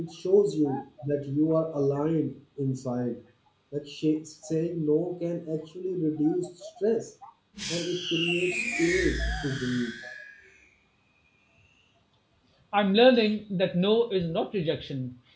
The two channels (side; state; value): both; identical; correlation 1.00